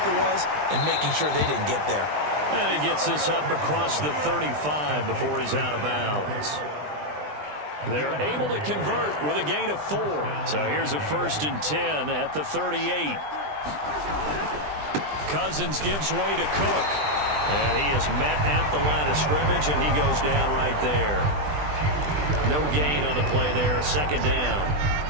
was and making sure they didn't get there. And he gets this up across the 35 before he's out of bounds. They're able to convert with a gain of 4. So here's a 1st and 10 at the 38. Cousins gives way to Cook. And he is met at the line of scrimmage, and he goes down right there. No gain on the play there. 2nd down.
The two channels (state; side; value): late; left; 20 ms